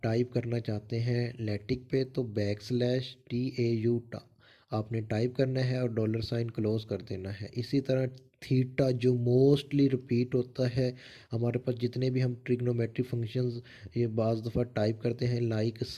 टाइप करना चाहते हैं लैटिक पे तो बैक स्लैश TAU टा आपने टाइप करना है और डॉलर साइन क्लोज कर देना है। इसी तरह थीटा जो मोस्टली रिपीट होता है हमारे पास, जितने भी हम ट्रिग्नोमेट्रिक फंक्शंस ये बाज़ दफ़ा टाइप करते हैं, लाइक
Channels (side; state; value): both; identical; correlation 1.00